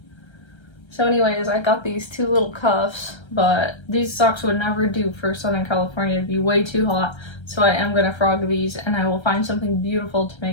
So anyways, I got these 2 little cuffs, but these socks would never do for Southern California. It'd be way too hot. So I am gonna frog these, and I will find something beautiful to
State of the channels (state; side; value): late; right; 1.3 ms